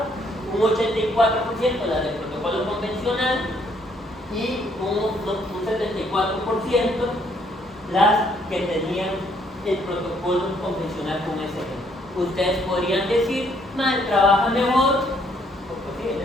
un 84% las del protocolo convencional y un 74% las que tenían el protocolo convencional con SG. Ustedes podrían decir, trabaja mejor,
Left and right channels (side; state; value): both; normal; correlation 0.68